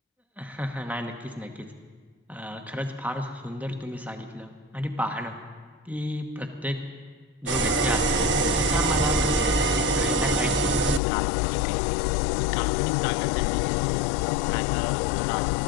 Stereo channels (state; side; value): drops out; right; at 11.0 s